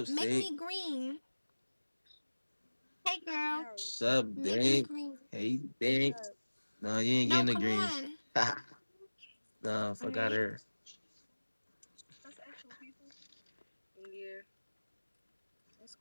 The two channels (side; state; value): both; inverted; correlation -1.00